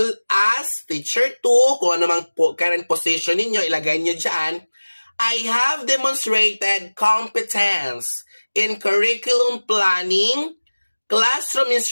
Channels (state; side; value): inverted; both; correlation -1.00